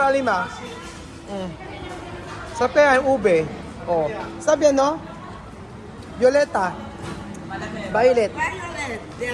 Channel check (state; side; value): identical; both; correlation 1.00